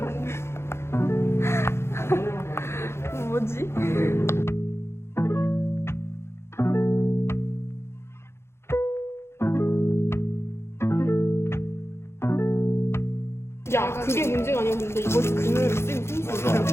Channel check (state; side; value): late; right; 0.12 ms